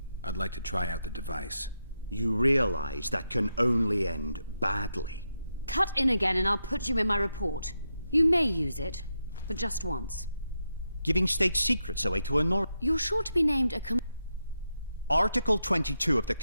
I'd like to try out the device. You realize that can only end badly. Cut in again and I'll put you in my report. You may use it, but just once. Giving state secrets away to a You're sure to be named a Article 22 of the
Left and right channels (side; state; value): both; inverted; correlation -0.85